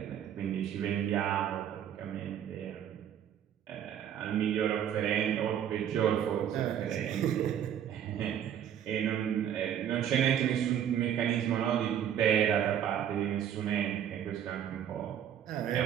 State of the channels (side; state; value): left; quieter; 9.7 dB